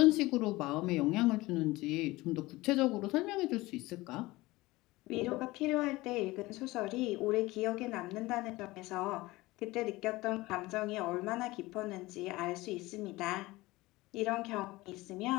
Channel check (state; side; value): quieter; right; 20.0 dB